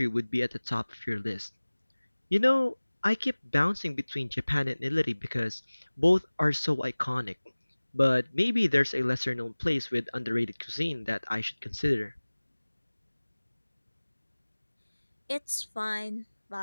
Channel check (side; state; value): both; inverted; correlation -1.00